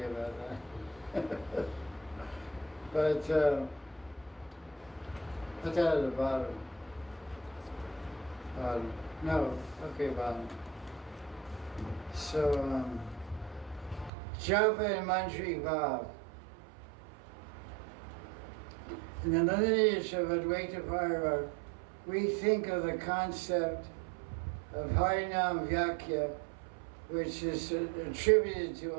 about that. But put that at the bottom. No, okay, bottom. So, Japa and Manjari Bhav. In the lineage of Advaita Parva, we think of the concept of Harinam Vyakya which is attributed to,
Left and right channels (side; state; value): left; drops out; at 14.1 s